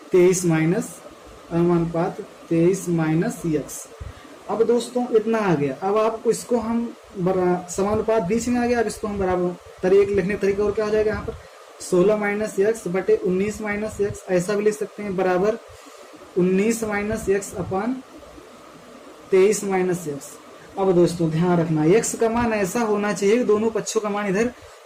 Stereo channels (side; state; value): both; identical; correlation 1.00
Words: 23 माइनस अनुपात 23 माइनस x। अब दोस्तों इतना आ गया। अब आपको इसको हम समानुपात बीच में आ गया, अब इसको हम बराबर लिखने का तरीका और क्या हो जाएगा यहाँ पर 16 माइनस x बटे 19 माइनस x, ऐसा भी लिख सकते हैं बराबर 19 माइनस x अपान 23 माइनस x। अब दोस्तों ध्यान रखना x का मान ऐसा होना चाहिए कि दोनों पक्षों का मान इधर